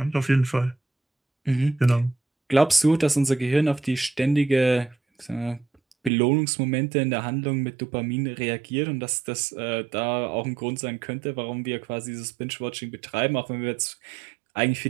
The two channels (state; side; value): drops out; left; at 6.1 s